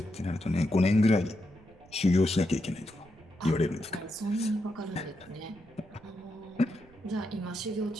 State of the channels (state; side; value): noise; right; rumble, 25 dB below the sound